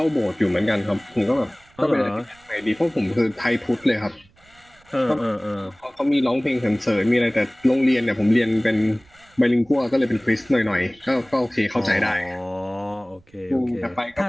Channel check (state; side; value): noise; right; rumble, 30 dB below the sound